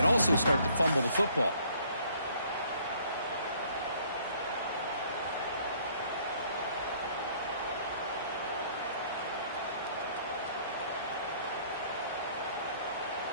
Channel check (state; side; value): inverted; both; correlation -0.60